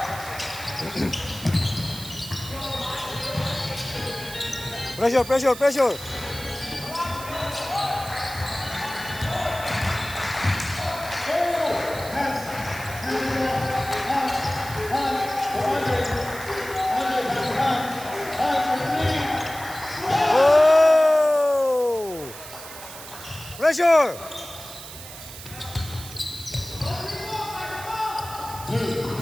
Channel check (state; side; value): noise; right; hiss, 13 dB below the sound